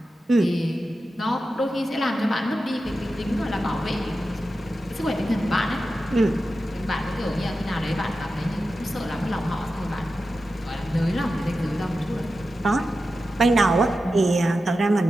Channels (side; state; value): both; normal; correlation 0.91